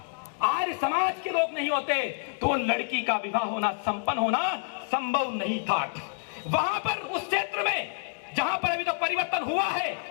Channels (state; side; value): silent; right; 59 dB below the other